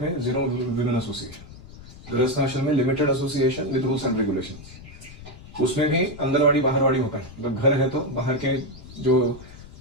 में 0 विमेन एसोसिएशन, गृहस्थ आश्रम में limited association with rules and regulations. उसमें भी अंदरवाड़ी बाहरवाड़ी होता है, मतलब घर है तो बाहर के जो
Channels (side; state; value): left; noise; rumble, 17 dB below the sound